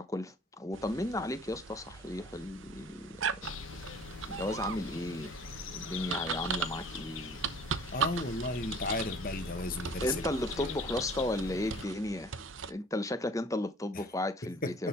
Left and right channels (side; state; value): both; normal; correlation 0.50